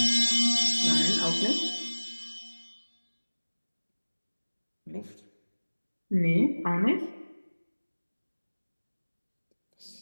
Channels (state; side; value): inverted; both; correlation -1.00